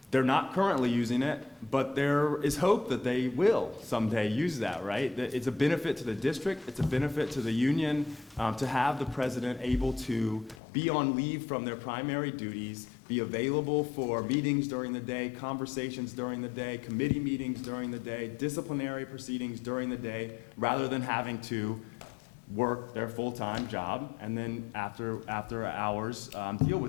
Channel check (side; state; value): right; drops out; at 10.6 s